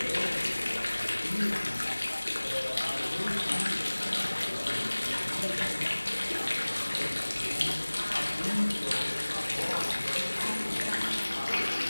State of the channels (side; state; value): both; inverted; correlation -1.00